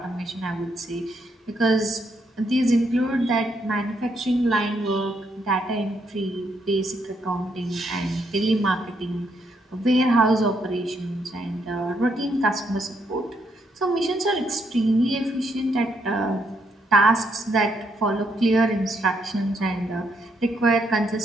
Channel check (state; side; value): normal; both; correlation 0.75